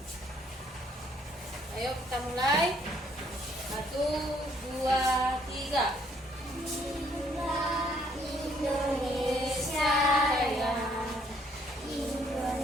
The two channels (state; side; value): normal; both; correlation 0.67